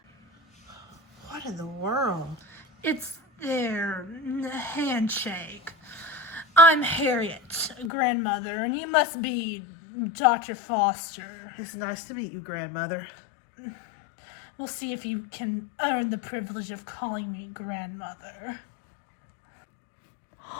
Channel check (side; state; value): right; drops out; at 7.9 s